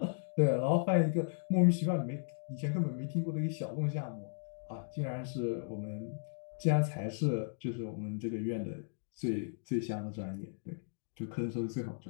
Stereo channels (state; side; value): silent; right; digital silence